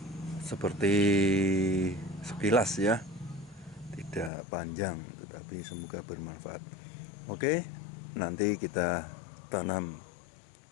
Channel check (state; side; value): drops out; right; at 4.3 s